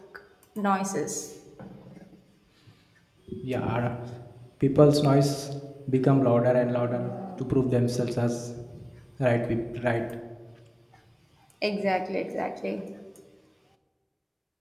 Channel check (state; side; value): identical; both; correlation 1.00